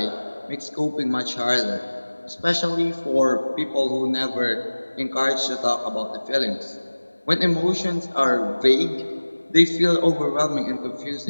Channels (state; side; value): inverted; both; correlation -1.00